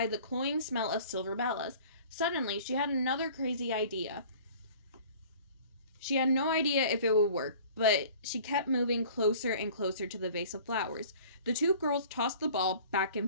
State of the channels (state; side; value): inverted; both; correlation -0.47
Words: cloying smell of silver bellas. Suddenly, she had another crazy idea. She had no idea if it would work, but she kept moving closer and closer to the vase of flowers. The two girls tossed the ball back